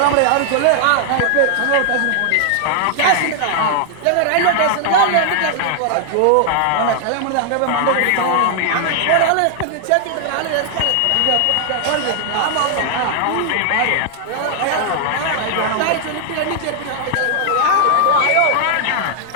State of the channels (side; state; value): both; different; correlation 0.00